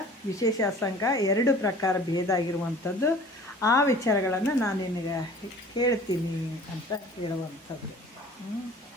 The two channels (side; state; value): both; normal; correlation 0.47